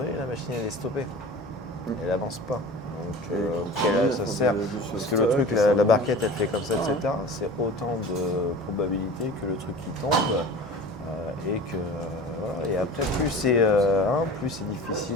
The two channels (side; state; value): both; normal; correlation 0.38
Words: la machine, elle est stoppée. Elle n'avance pas. Donc, ça sert. Parce que le truc, la barquette, elle fait comme ça, etc. C'est autant de probabilités que le truc qui tombe. Et que voilà. Et après, plus c'est